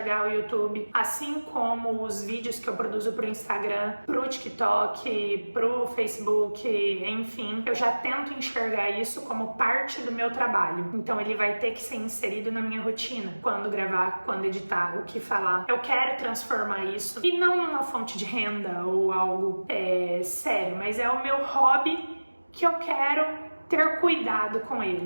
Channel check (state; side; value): inverted; both; correlation -1.00